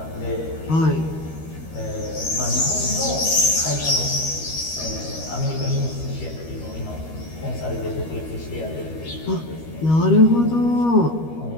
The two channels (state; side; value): late; right; 13 ms